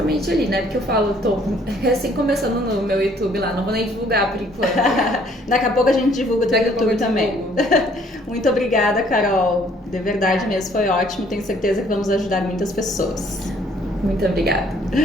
ali, né? Porque eu falo, tô recém começando no meu YouTube lá, não vou nem divulgar por enquanto. Daqui a pouco a gente divulga o teu YouTube também. Muito obrigada, Carol. De verdade mesmo, foi ótimo. Tenho certeza que vamos ajudar muitas pessoas. Muito obrigada.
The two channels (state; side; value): normal; both; correlation 0.61